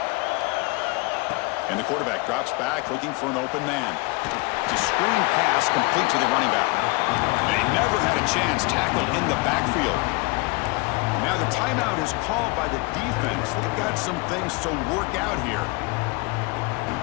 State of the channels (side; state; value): right; quieter; 26.8 dB